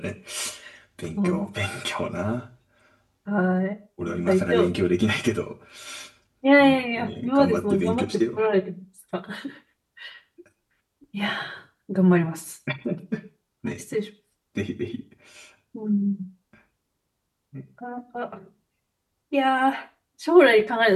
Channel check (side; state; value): both; identical; correlation 1.00